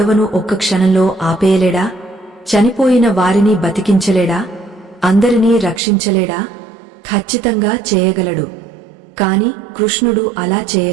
ఒక్క క్షణంలో ఆపేయలేడా? చనిపోయిన వారిని బతికించలేడా? అందరినీ రక్షించలేడా? ఖచ్చితంగా చేయగలడు. కాని కృష్ణుడు అలా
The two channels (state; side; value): drops out; left; at 5.8 s